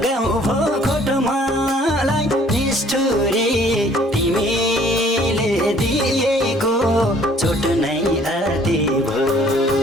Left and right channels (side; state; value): both; normal; correlation 0.58